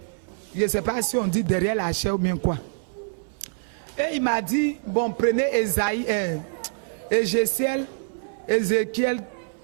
ne sais pas si on dit derrière la chair ou bien quoi. Et il m'a dit, bon, prenez Ézéchiel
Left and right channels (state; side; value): silent; left; 60 dB below the other